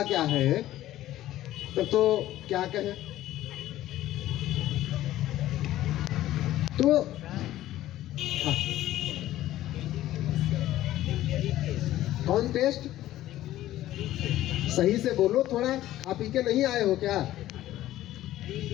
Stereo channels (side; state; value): right; quieter; 14.3 dB